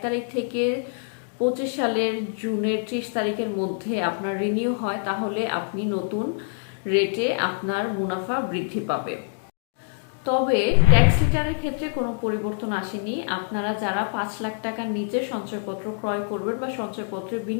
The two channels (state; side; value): silent; right; digital silence